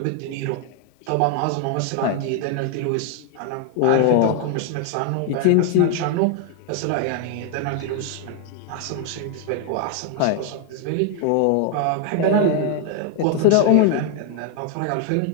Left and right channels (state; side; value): different; both; correlation 0.01